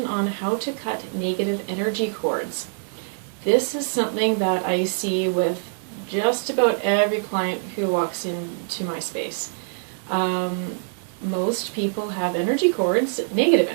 on how to cut negative energy cords. This is something that I see with just about every client who walks into my space. Most people have energy cords, negative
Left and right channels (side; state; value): left; silent; digital silence